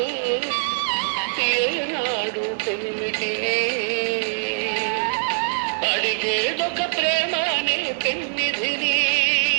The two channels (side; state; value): left; silent; digital silence